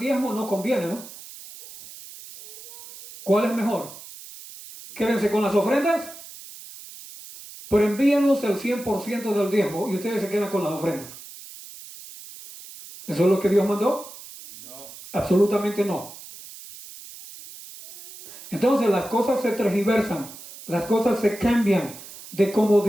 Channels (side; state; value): right; noise; hiss, 16 dB below the sound